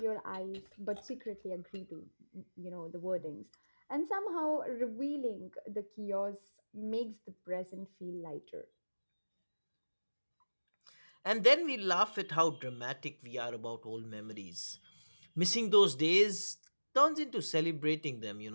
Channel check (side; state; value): both; inverted; correlation -1.00